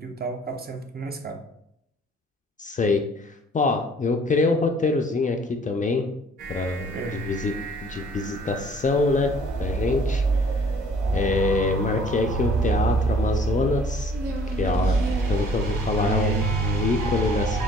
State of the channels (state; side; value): normal; both; correlation 0.56